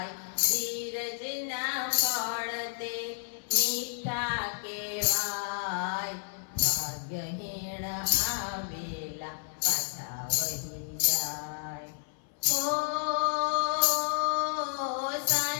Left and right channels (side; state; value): right; silent; 57 dB below the other